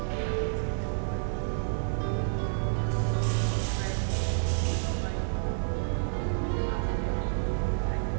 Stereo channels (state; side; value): silent; left; 58 dB below the other